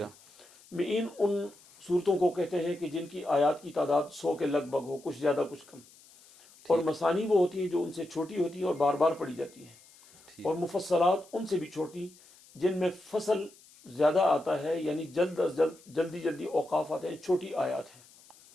صورتیں ہیں۔ معین ان صورتوں کو کہتے ہیں کہ جن کی آیات کی تعداد 100 کے لگ بھگ ہو، کچھ زیادہ کچھ کم، اور مثانی وہ ہوتی ہیں جو ان سے چھوٹی ہوتی ہیں اور بار بار پڑھی جاتی ہیں، ٹھیک اور مفصلات ان سے بھی چھوٹی جن میں فصل زیادہ آتا ہے، یعنی جلد از جلد جلدی اوقاف آتے ہیں، چھوٹی آیات ہیں،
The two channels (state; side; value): noise; left; hiss, 25 dB below the sound